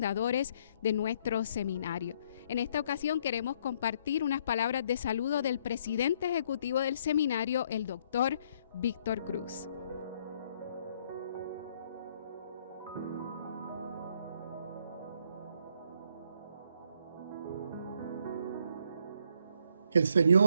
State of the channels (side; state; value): both; inverted; correlation -0.69